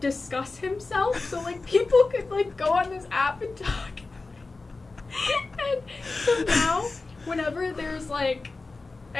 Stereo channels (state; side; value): quieter; right; 3.6 dB